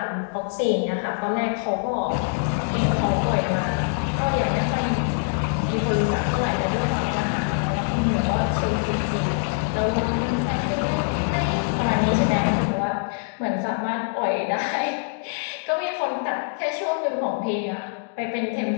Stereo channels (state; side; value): silent; right; digital silence